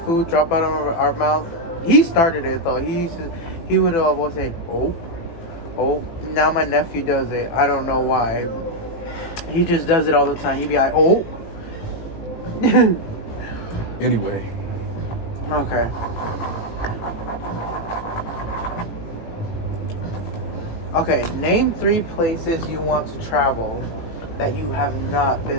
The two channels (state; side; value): late; right; 18 ms